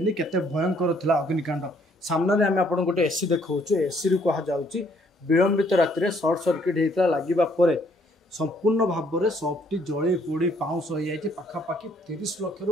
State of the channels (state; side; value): normal; both; correlation 0.66